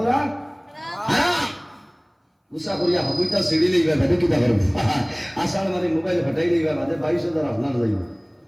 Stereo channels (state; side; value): identical; both; correlation 1.00